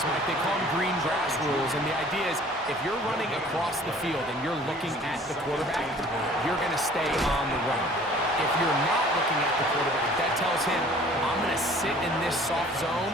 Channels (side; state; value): both; normal; correlation 0.51